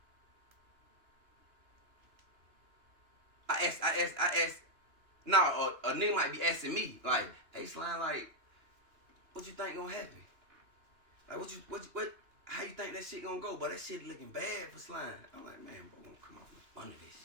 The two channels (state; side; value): late; left; 2.9 ms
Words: I asked. No, a nigga might be asking me, like, hey, slime, like, what you think gonna happen? Like, what? How you think that shit gonna go? But that shit looking bad for slime. I'm like, man, bro, gonna come off up under that